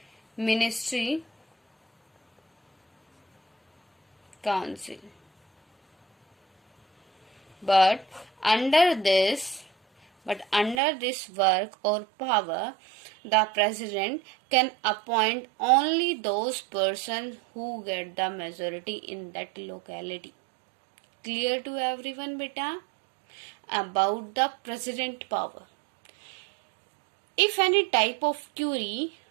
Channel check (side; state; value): left; drops out; at 10.8 s